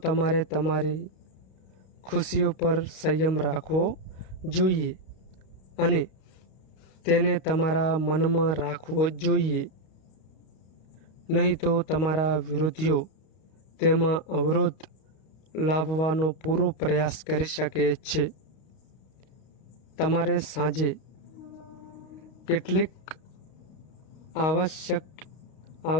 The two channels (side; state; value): right; late; 32 ms